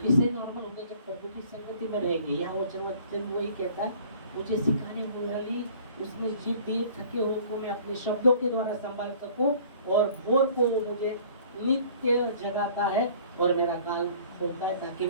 नॉर्मल होगा? जब प्रभु की संगति में रहेंगे। यहाँ वचन वही कहता है, मुझे सिखाने वाली उसने जीभ दी, थके हुए को मैं अपने शब्दों के द्वारा संभाल सकूं, और भोर को वो मुझे नित्य जगाता है और मेरा कान खोलता है ताकि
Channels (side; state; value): both; inverted; correlation -0.52